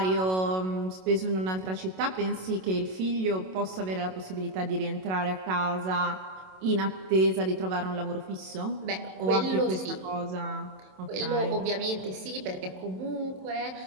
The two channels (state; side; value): late; left; 27 ms